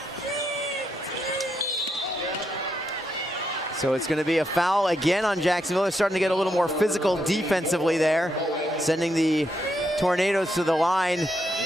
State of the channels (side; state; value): both; normal; correlation 0.80